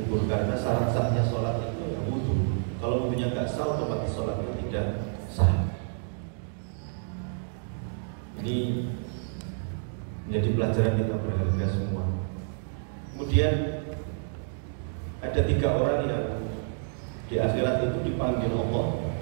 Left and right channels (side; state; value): left; silent; digital silence